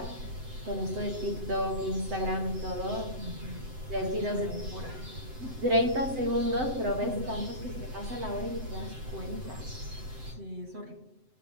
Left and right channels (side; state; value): left; late; 7.8 ms